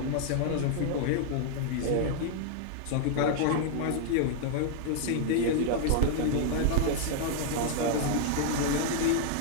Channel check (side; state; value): both; different; correlation 0.00